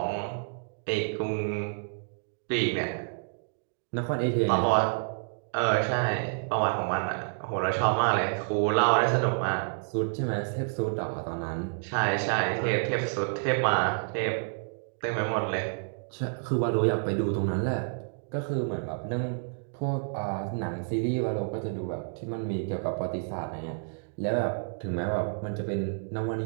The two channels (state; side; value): silent; left; digital silence